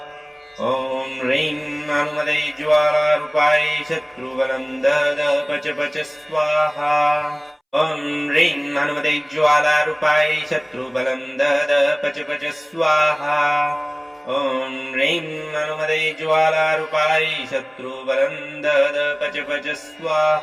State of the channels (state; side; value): identical; both; correlation 1.00